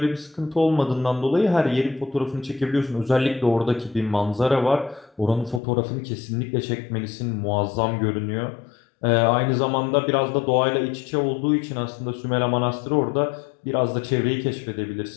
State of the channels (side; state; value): right; drops out; at 5.6 s